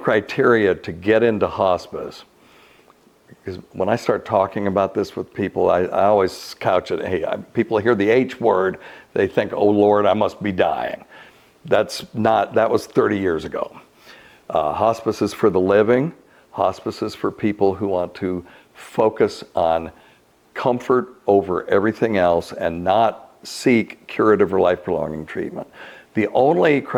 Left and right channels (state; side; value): identical; both; correlation 1.00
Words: to get into hospice, because when I start talking about this with people, I always couch it, hey, people hear the H word, they think, oh Lord, I must be dying. That was 30 years ago. Hospice is for the living. Hospice is for people who want to focus on comfort over everything else and not seek curative or life-prolonging treatment. The only